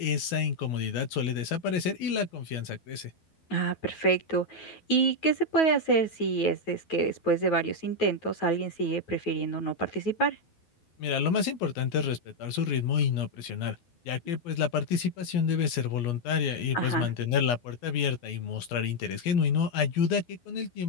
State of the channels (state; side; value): late; right; 12 ms